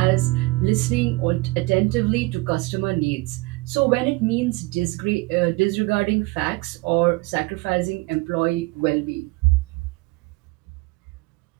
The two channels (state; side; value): quieter; left; 22.9 dB